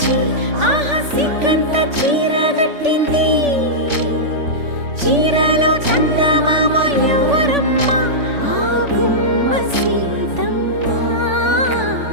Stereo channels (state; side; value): late; left; 3.5 ms